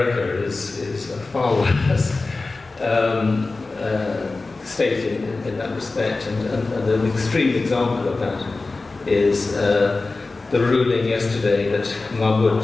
is a far worse state in that respect, and an extreme example of that is the ruling yesterday that Mahmoud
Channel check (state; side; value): quieter; right; 3.5 dB